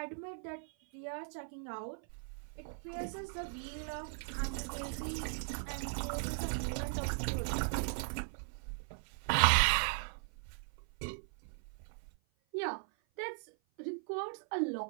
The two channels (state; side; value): silent; left; 52 dB below the other